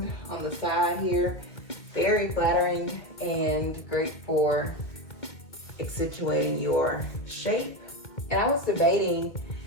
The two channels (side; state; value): right; late; 2.1 ms